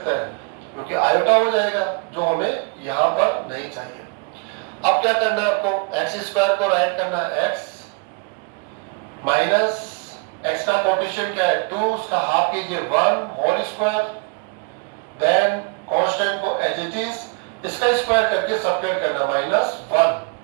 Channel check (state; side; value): quieter; left; 33.1 dB